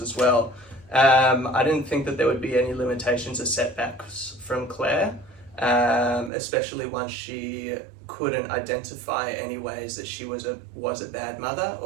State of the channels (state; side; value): drops out; left; at 6.3 s